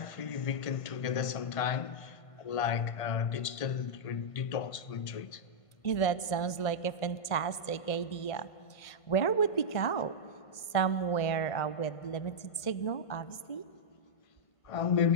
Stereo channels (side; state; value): right; late; 1.5 ms